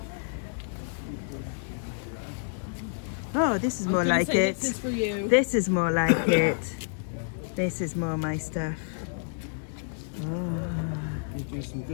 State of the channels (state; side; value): silent; right; 59 dB below the other